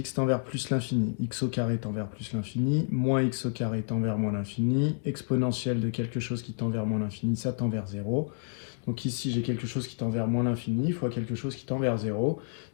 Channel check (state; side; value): silent; right; digital silence